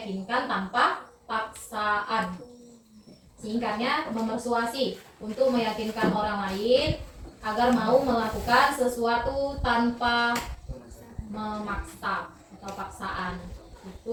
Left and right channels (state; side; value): identical; both; correlation 1.00